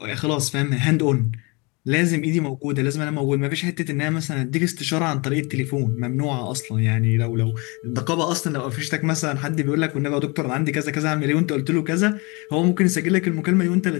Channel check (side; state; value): right; quieter; 28.4 dB